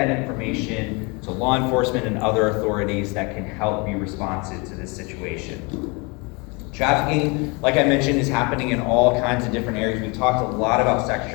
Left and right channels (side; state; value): right; quieter; 29.4 dB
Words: information to law enforcement and other authorities that can help be responsive to this situation. Trafficking, like I mentioned, is happening in all kinds of different areas. We talked a lot about sex